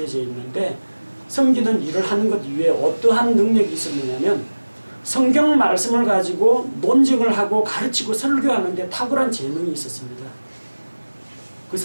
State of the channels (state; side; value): inverted; both; correlation -1.00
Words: 있는데 섬기는 일을 하는 것 이외에 어떠한 능력이 있었느냐면 성경 말씀을 가지고 논증을 하고 가르치고 설교하는 데 탁월한 재능이 있었습니다. 그